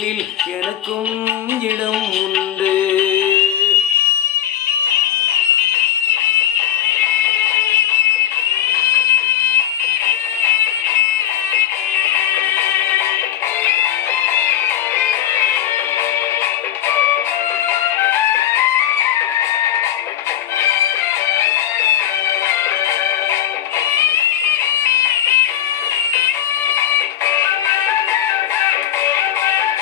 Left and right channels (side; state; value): right; quieter; 10.9 dB